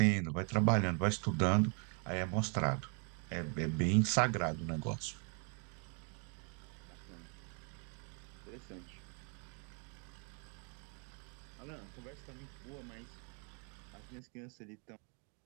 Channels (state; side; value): quieter; left; 37.6 dB